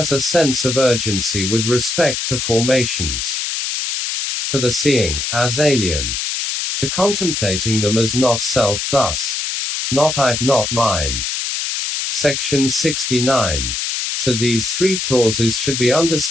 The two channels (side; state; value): left; noise; hiss, 2 dB below the sound